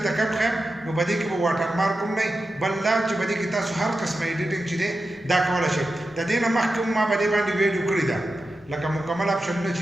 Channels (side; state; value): both; normal; correlation 0.91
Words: کوم ښیم نو په دې کې به واټر مارک هم نه بل دا چې په دې کې تاسو هر قسمه ایډیټینګ چې دی دا کولی شئ د دې نه مخکې ما په دې باندې ویډیو کړې ده لکه مکمل اپشنونه